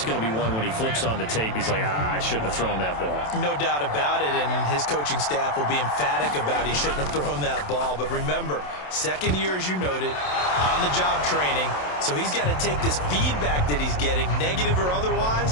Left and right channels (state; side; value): late; right; 27 ms